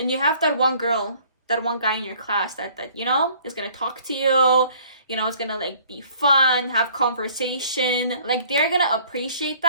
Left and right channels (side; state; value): both; inverted; correlation -0.56